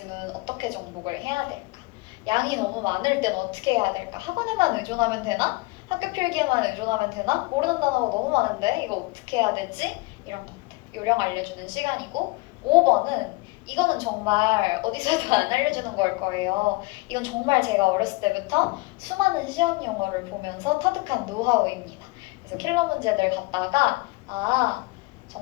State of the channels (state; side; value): quieter; right; 24.0 dB